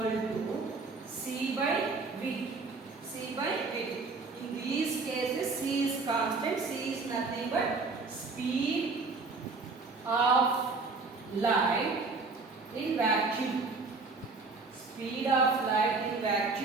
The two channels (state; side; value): quieter; left; 4.0 dB